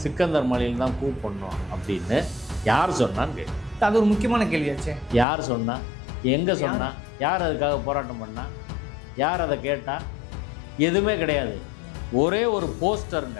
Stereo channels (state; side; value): drops out; right; at 5.2 s